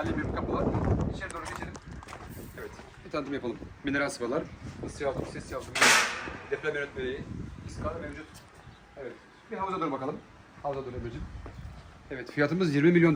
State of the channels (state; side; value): identical; both; correlation 1.00